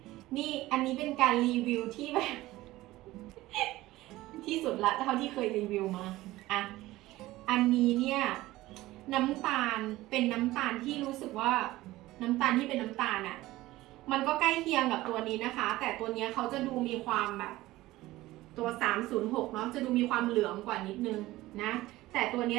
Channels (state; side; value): quieter; left; 17.5 dB